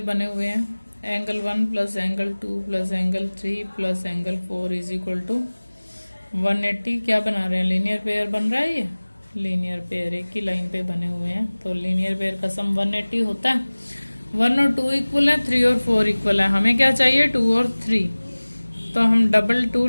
हुए हैं. Angle 1 plus angle 2 plus angle 3 plus angle 4 is equal to 180. क्या बना रहे हैं लीनियर पेयर बन रहा है. ये लीनियर पेयर एक ही लाइन पे बने हुए हैं तो लीनियर पेयर का सम 180 होता है. 1 और 2 इक्वल है 3 और 4 इक्वल है. हमें क्या चाहिए 2 और 3. तो हम 2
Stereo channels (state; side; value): inverted; both; correlation -1.00